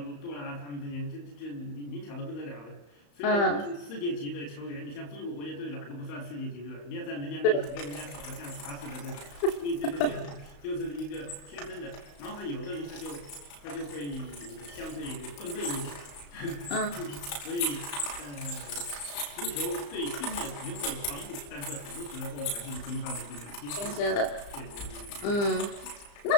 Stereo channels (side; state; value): right; late; 35 ms